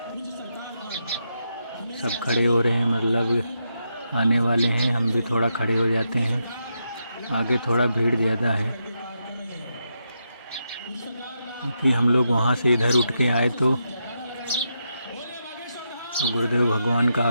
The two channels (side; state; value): both; inverted; correlation -0.84